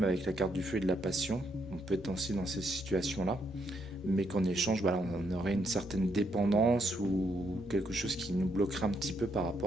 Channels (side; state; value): both; normal; correlation 0.76